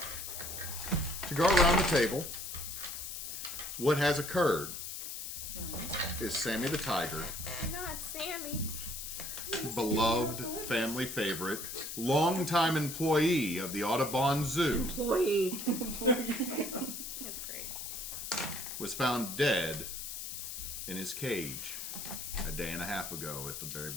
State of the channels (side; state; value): left; noise; hiss, 6 dB below the sound